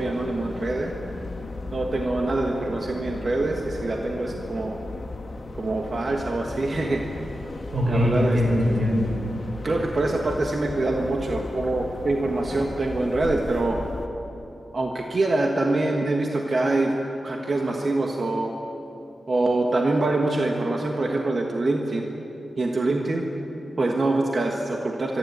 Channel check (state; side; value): normal; both; correlation 0.92